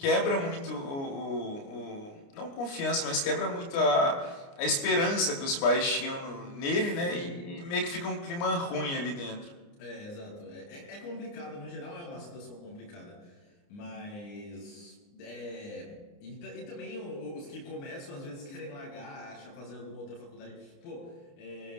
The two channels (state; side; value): late; right; 29 ms